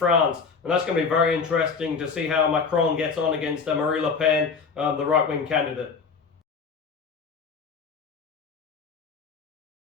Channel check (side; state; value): right; quieter; 5.3 dB